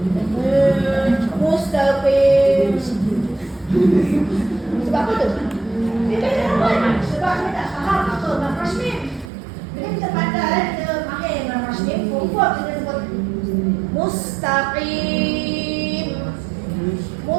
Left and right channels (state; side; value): drops out; left; at 9.3 s